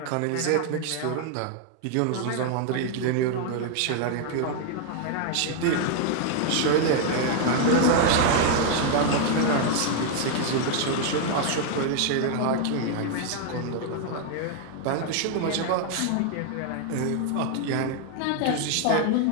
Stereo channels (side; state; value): both; different; correlation 0.00